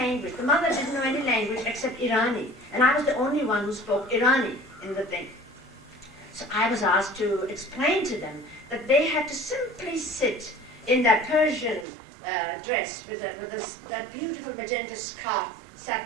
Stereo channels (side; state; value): left; drops out; at 11.9 s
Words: The mother didn't know any language except Irani. And I was the only one who spoke Irani in the thing. So I was asked to explain to them that they had to simply sit in that Persian dress with that beautiful magenta scarf,